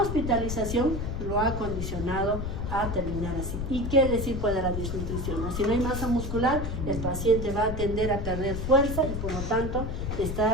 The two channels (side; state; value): left; noise; rumble, 4 dB below the sound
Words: lo ha condicionado a terminar así. ¿Y qué decir puede la desnutrición? Si no hay masa muscular, el paciente va a tender a perder fuerza y por lo tanto